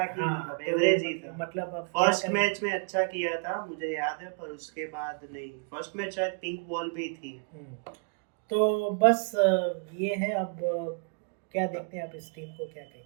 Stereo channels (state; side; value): quieter; left; 39.1 dB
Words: ही, हाँ, मतलब तो एवरेज ही था। मतलब अब क्या फर्स्ट करें। मैच में अच्छा किया था मुझे याद है, पर उसके बाद नहीं। फर्स्ट मैच शायद पिंक बॉल भी थी। तो बस ये है। अब क्या देखते हैं आप इस टीम को, क्या